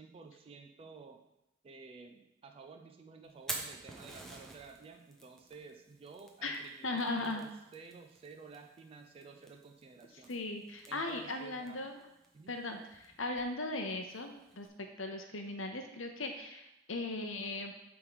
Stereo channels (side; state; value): both; normal; correlation 0.07